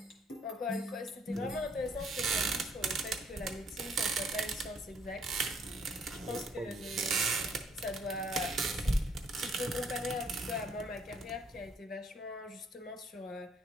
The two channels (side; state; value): both; normal; correlation 0.65